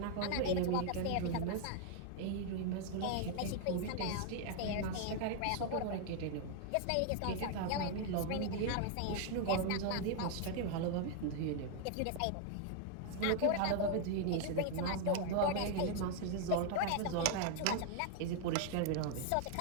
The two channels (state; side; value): different; both; correlation 0.00